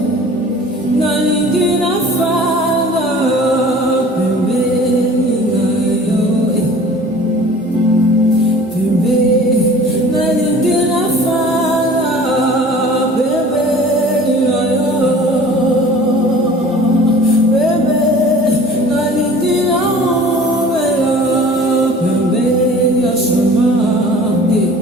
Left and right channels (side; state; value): both; normal; correlation 0.46